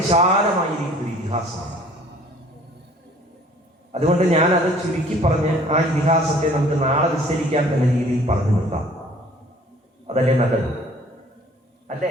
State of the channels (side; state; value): both; normal; correlation 0.53